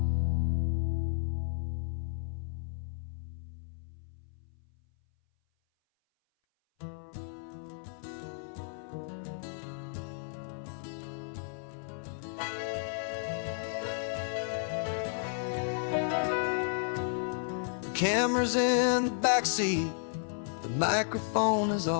Camera's in the backseat, the microphone is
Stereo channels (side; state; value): right; silent; 56 dB below the other